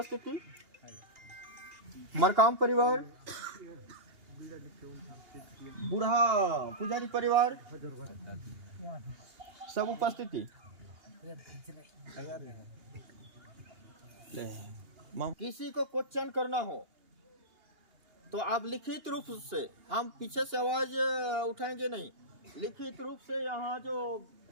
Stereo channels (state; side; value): late; left; 2.8 ms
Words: मरकाम परिवार, बूढ़ा पुजारी परिवार सब उपस्थिति। किसी को क्वेश्चन करना हो तो आप लिखित रूप से, हम पीछे से आवाज उठाएंगे नहीं, लिखित रूप से यहाँ जो